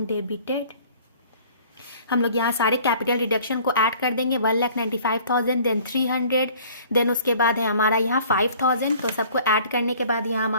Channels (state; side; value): inverted; both; correlation -0.52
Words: डेबिटेड। हम लोग यहाँ सारे कैपिटल रिडक्शन को ऐड कर देंगे। 1,95,000, देन 300, देन उसके बाद है हमारा यहाँ 5,000। तो सबको ऐड करने के बाद यहाँ